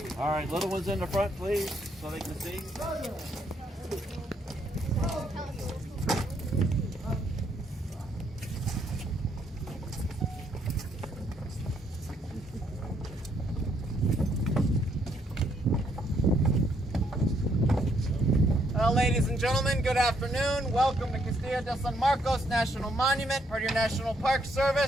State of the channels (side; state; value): both; normal; correlation 0.72